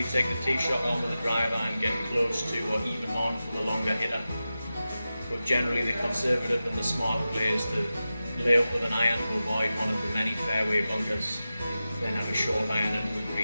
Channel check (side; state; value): both; inverted; correlation -0.93